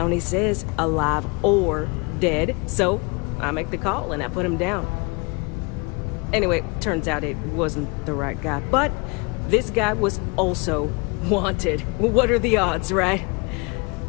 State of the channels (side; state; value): right; quieter; 29.6 dB